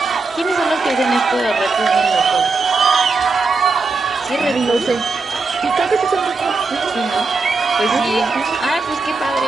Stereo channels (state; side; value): quieter; left; 3.9 dB